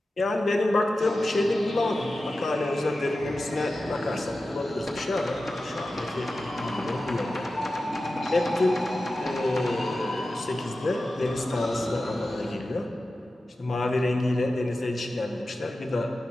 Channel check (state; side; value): normal; both; correlation 0.93